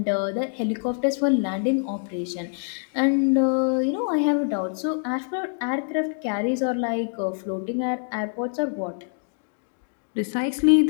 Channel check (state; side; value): silent; right; 60 dB below the other